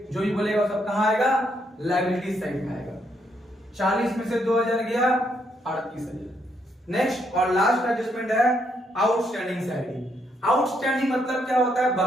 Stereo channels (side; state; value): both; normal; correlation 0.75